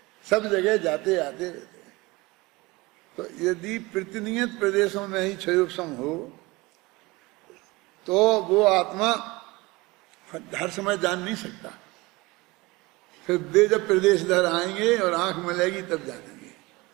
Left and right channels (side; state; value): left; quieter; 22.7 dB